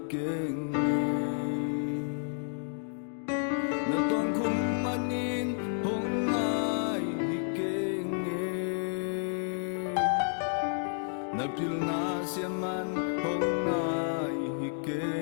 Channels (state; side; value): silent; right; digital silence